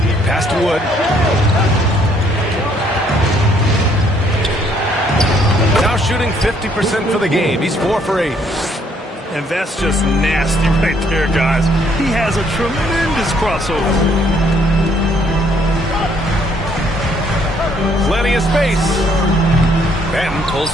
Pass to Wood. Now shooting 50% for the game. He's 4 for 8. And that's just nasty right there, guys. He has a tremendous crossover. Plenty of space. Ben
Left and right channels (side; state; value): both; normal; correlation 0.66